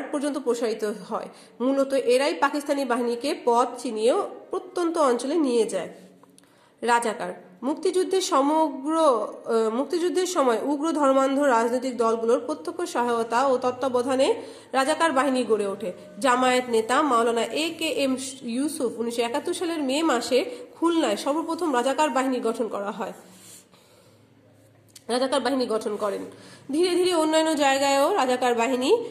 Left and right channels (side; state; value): both; identical; correlation 1.00